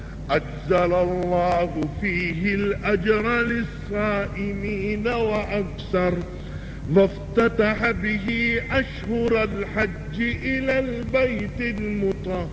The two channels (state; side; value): identical; both; correlation 1.00